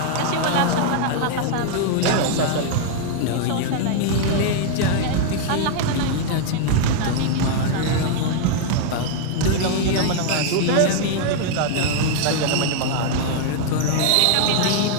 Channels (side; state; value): both; different; correlation 0.00